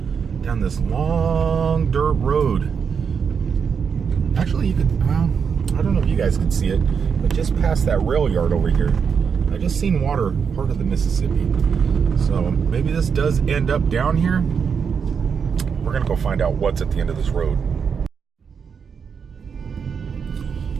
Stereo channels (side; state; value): left; quieter; 6.4 dB